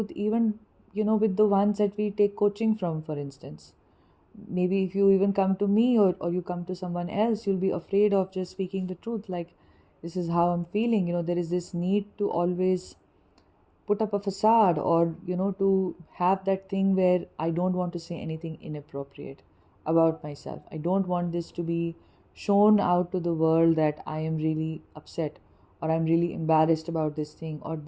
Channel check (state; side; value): identical; both; correlation 1.00